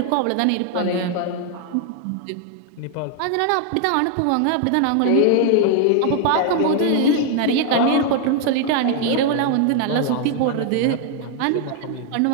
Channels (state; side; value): different; both; correlation 0.00